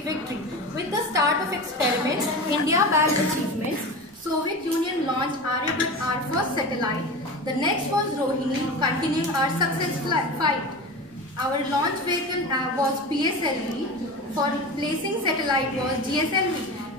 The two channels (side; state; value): both; normal; correlation 0.29